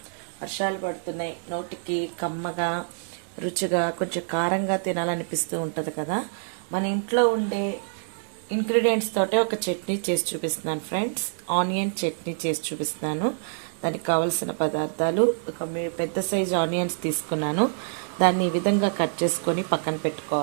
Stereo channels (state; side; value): silent; left; digital silence